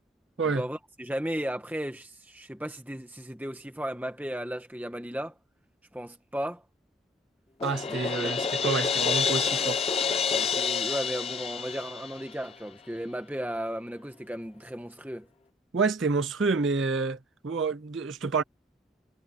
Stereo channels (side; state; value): both; normal; correlation 0.53